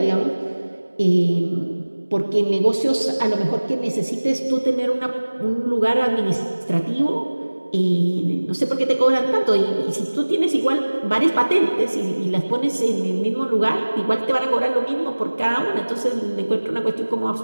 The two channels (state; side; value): inverted; both; correlation -1.00